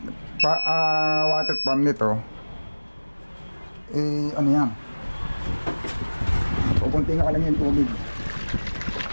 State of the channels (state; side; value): inverted; both; correlation -1.00